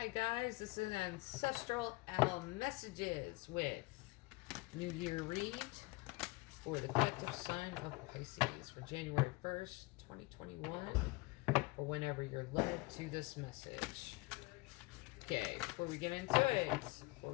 guys, this is Ancestral Owl Messages with New Year read for the collective sign of Pisces for January 1st, 2021, or whenever you're led to this message. Okay, before we get into it, before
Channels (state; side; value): quieter; right; 22.9 dB